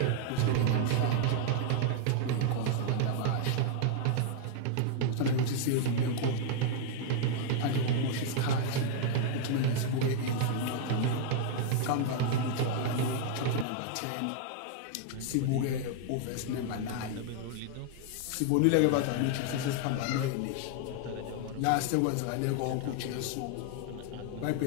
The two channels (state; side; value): different; both; correlation 0.00